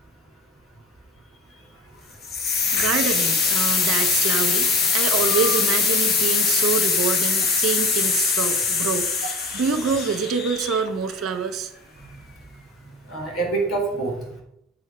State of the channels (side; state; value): both; normal; correlation 0.34